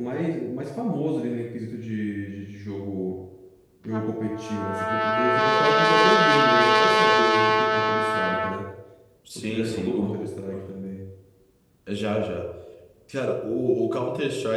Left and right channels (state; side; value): identical; both; correlation 1.00